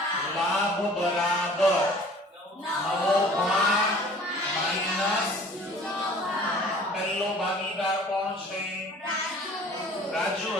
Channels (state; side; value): normal; both; correlation 0.49